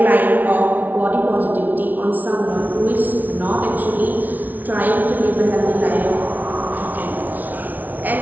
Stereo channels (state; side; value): late; left; 0.080 ms